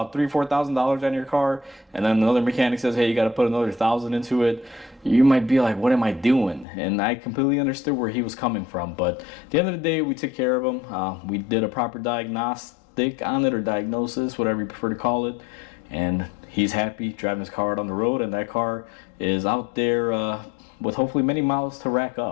$3,000-$4,000 on your car, and then another mechanic says, "Hey, you got to put another $1,000 into it," you might be like, "What am I doing?" And I completely understood where he was coming from. But at the end of the day, we took care of him. We did a proper diagnostic on it, or diagnosis, whatever you prefer to call it. And he's happy driving his car out on the road, and that car is out there with hopefully many miles to rack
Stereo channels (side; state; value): right; drops out; at 6.7 s